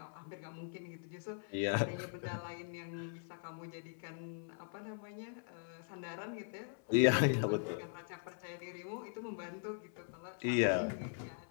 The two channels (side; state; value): right; silent; 51 dB below the other